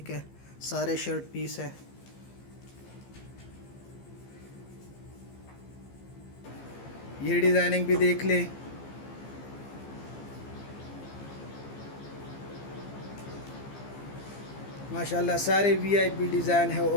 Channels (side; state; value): right; late; 15 ms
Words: है, सारे शर्ट पीस है। ये डिज़ाइनिंग भी देख ले। माशाल्लाह सारे वीआईपी डिज़ाइन है